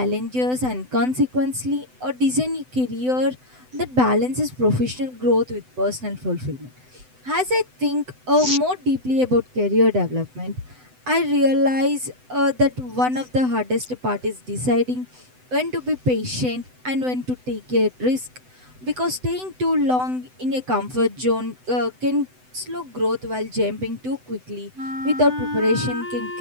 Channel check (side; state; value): left; late; 7.9 ms